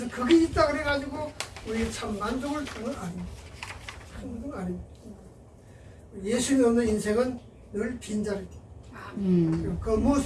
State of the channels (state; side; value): identical; both; correlation 1.00